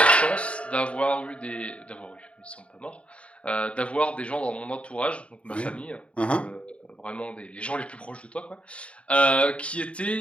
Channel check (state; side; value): late; right; 0.061 ms